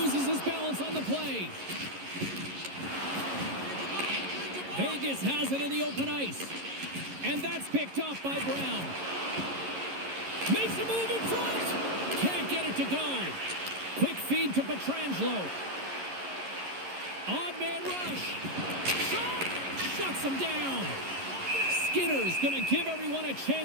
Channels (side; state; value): left; late; 11 ms